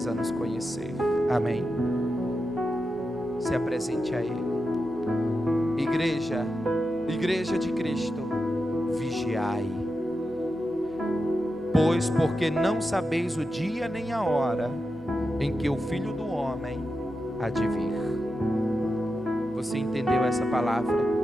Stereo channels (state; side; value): normal; both; correlation 0.89